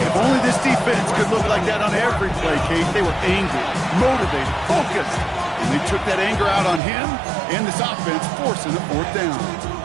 only this defense could look like that on every play, Kate. They were angry, motivated, focused. And they took that anger out on him and this offense, forcing a 4th down.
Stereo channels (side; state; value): left; drops out; at 6.8 s